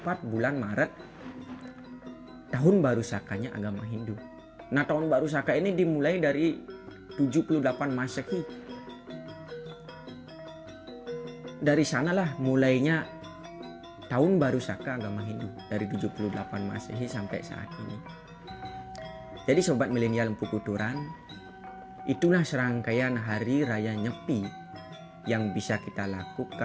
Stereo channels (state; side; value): identical; both; correlation 1.00